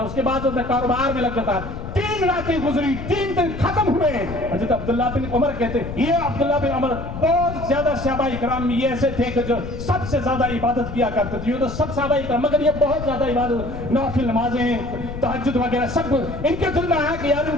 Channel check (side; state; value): left; noise; rumble, 8 dB below the sound